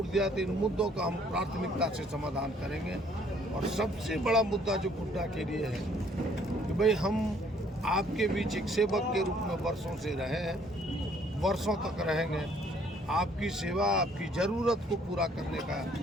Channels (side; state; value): both; normal; correlation 0.62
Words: दिया तो इन मुद्दों का हम प्राथमिकता से समाधान करेंगे। और सबसे बड़ा मुद्दा जो गुड्डा के लिए है कि भाई हम आपके बीच एक सेवक के रूप में वर्षों से रहे हैं, वर्षों तक रहेंगे, आपकी सेवा, आपकी ज़रूरत को पूरा करने का